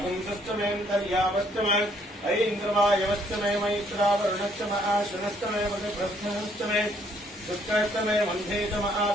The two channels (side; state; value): both; normal; correlation 0.67